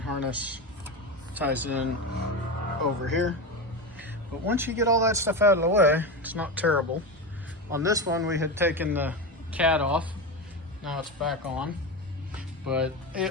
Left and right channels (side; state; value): both; normal; correlation 0.19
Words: ties in over here. But once you get all that stuff out of the way, it's not terrible. On this one, we had taken the cat off. Now it's back on, but